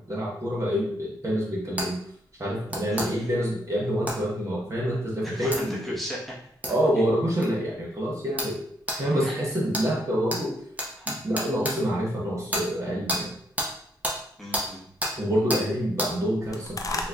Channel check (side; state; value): both; normal; correlation 0.72